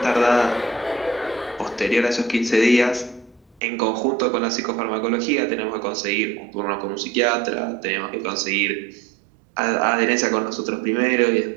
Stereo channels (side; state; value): left; drops out; at 3.6 s